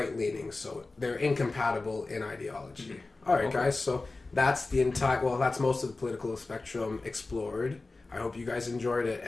so they're incompatible in ideology. All right, guys, so... that's that's most of the political spectrum explored. I hope you guys enjoyed it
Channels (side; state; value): right; quieter; 3.4 dB